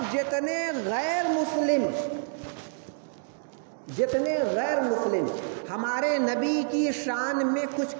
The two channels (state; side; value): silent; left; digital silence